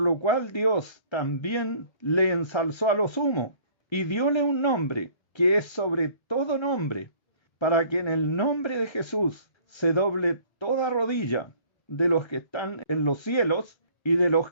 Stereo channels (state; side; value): late; right; 1.3 ms